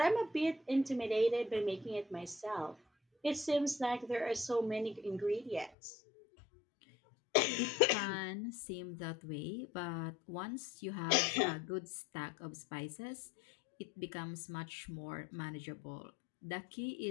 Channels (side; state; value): right; drops out; at 5.7 s